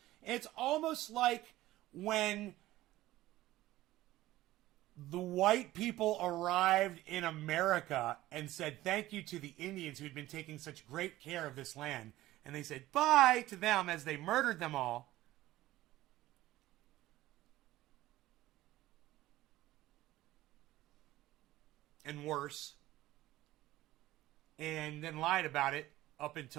It's almost like when the white people arrived in America and said thank you to the Indians who had been taking such great care of this land. And they said bye to them as they murdered them all. And worse, and then lied about it up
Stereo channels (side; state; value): left; quieter; 16.1 dB